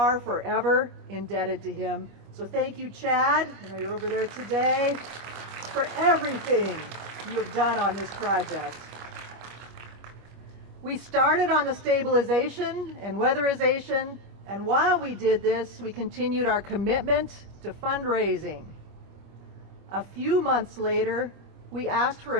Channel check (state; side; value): late; left; 25 ms